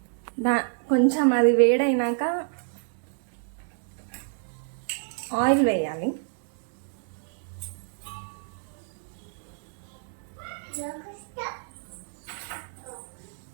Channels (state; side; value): silent; left; digital silence